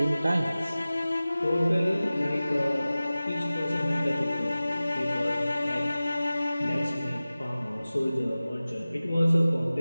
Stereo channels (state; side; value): inverted; both; correlation -0.97